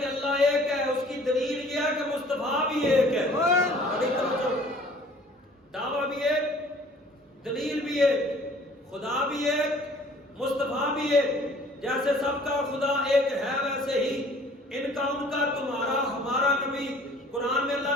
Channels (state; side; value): normal; both; correlation 0.52